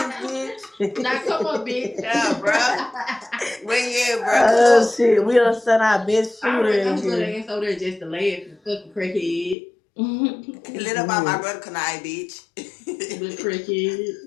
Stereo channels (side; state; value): right; drops out; at 9.6 s